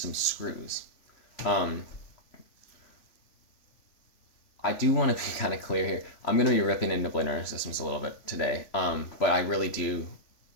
screws. Um, I do want to be kind of clear here. I'm going to be ripping into Bladerunners systems a little bit today, but I really do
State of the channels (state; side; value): late; right; 3.4 ms